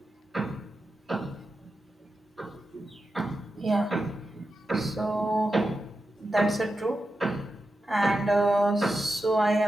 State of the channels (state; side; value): normal; both; correlation 0.90